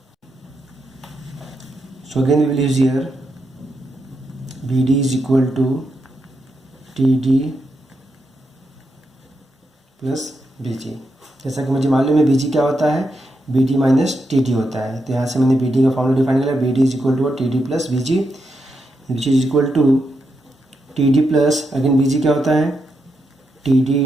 so again we will use here B D is equal to T D plus B G. जैसा कि मुझे मालूम है बी जी क्या होता है, B D minus T D होता है। तो यहाँ से मैंने बी डी का फॉर्मूला डिफाइन किया, B D is equal to T D plus B G, which is equal to T D plus, again B G क्या होता है, T D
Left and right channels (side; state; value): both; normal; correlation 0.84